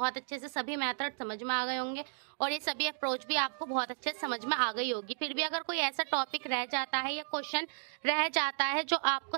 अच्छे से सभी मेथड समझ में आ गए होंगे और ये सभी अप्रोच भी आपको बहुत अच्छे से समझ में आ गई होगी। फिर भी अगर कोई ऐसा टॉपिक रह जाता है या क्वेश्चन रह जाता है जो आपको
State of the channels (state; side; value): silent; left; digital silence